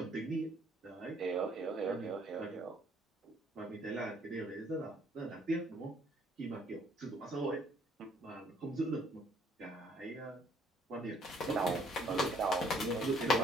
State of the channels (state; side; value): normal; both; correlation 0.63